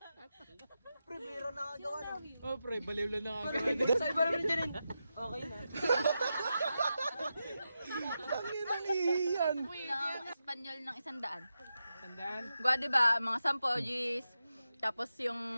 Pre, biro nakagawa na. Oh, pre, baliw lang nakagawa. Sa iba naman dyan. Okay na. Tangina niyan. Ng Espanyol ng 100. Tandaan. Gwa, diba? Mga 10 G's. Tapos yung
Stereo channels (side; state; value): both; inverted; correlation -0.89